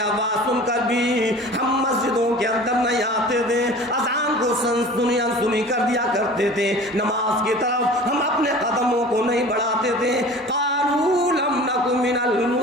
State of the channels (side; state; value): both; normal; correlation 0.41